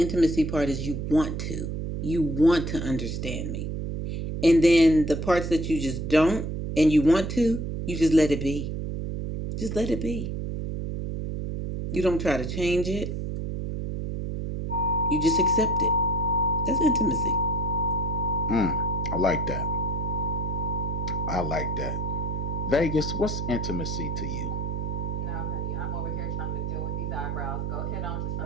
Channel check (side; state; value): right; noise; hum, 3 dB below the sound